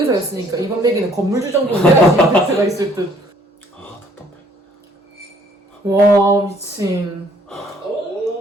이번 내기는 건물주 정도는 내야지 임팩트가 있을 듯. 아 답답해. 와 미친.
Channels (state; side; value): normal; both; correlation 0.61